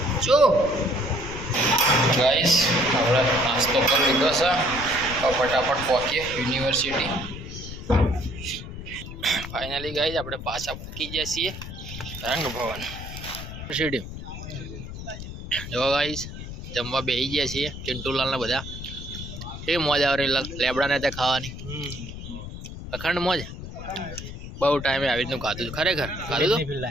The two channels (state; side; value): noise; left; rumble, 10 dB below the sound